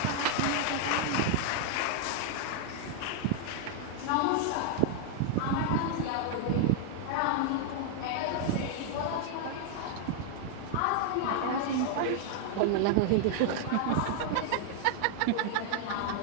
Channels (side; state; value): both; different; correlation 0.00